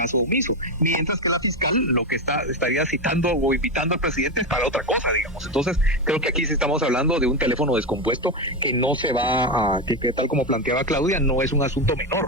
omiso, mientras que la fiscal lo que estaría citando o invitando al presidente es para otra cosa, digamos. Entonces creo que aquí sí estamos hablando de un teléfono descompuesto que no se va a, que tal como planteaba Claudia, no es un asunto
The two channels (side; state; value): both; normal; correlation 0.13